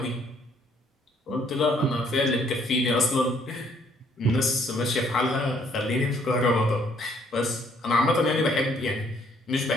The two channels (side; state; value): both; normal; correlation 0.65